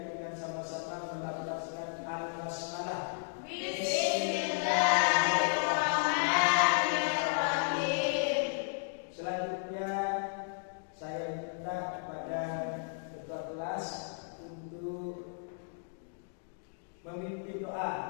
dengan sama-sama melafazkan al-basmalah. Bismillahirrahmanirrahim. Selanjutnya saya minta kepada ketua kelas untuk memimpin doa.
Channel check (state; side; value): silent; right; digital silence